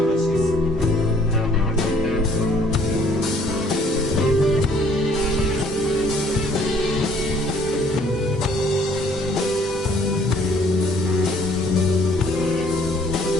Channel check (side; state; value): both; normal; correlation 0.60